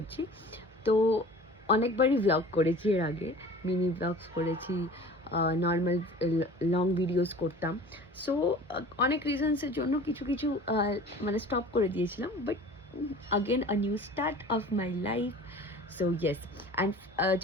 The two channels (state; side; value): normal; both; correlation 0.43